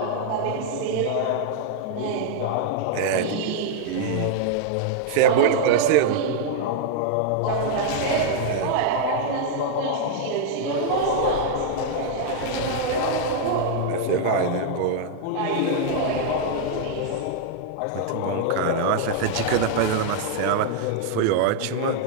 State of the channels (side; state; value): both; different; correlation -0.01